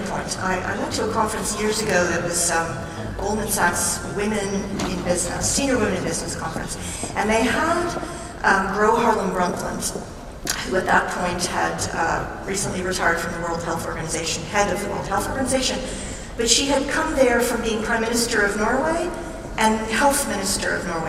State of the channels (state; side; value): identical; both; correlation 1.00